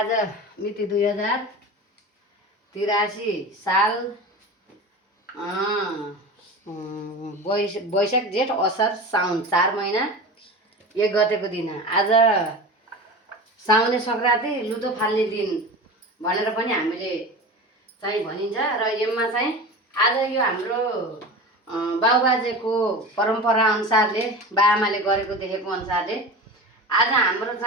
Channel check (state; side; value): normal; both; correlation 0.31